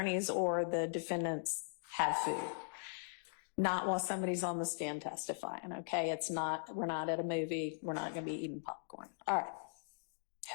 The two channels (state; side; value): silent; right; digital silence